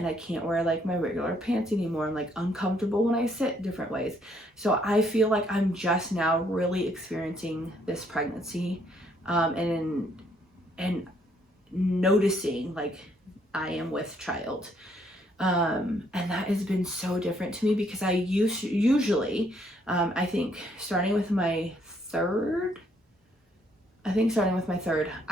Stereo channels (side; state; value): both; normal; correlation 0.69